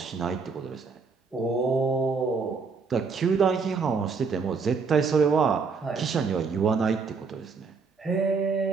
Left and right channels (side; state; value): left; quieter; 5.0 dB